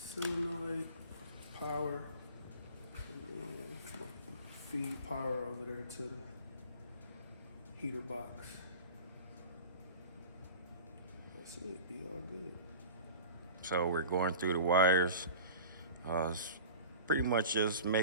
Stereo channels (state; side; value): inverted; both; correlation -0.38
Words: solenoid power. And then feed power over there to the heater box. That's it, be all good. So we're going through the wires. It's pretty much just